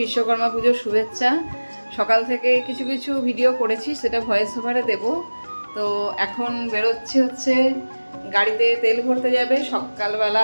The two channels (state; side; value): inverted; both; correlation -1.00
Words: বিশ্বকর্মা পুজোর শুভেচ্ছা। সকাল থেকে কিছু কিছু ভিডিও করেছি, সেটা ভয়েস ওভারে দেব। তো এখন বেরোচ্ছি হচ্ছে গাড়িতে তেল ভরতে যাবে সকালবেলা